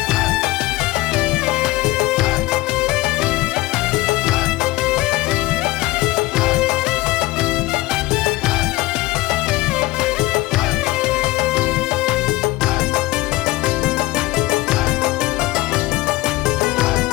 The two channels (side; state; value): right; quieter; 19.2 dB